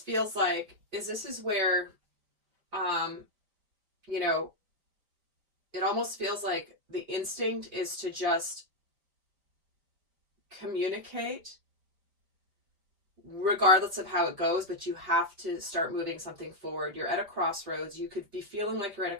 like is this is where, it almost feels like the instinct is to just communicate regardless of how it goes, but you have to start moving something forward. You're at a crossroads. You could be feeling like you're at a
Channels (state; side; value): late; left; 5.1 ms